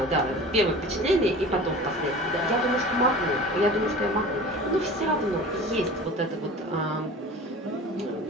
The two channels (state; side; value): normal; both; correlation 0.38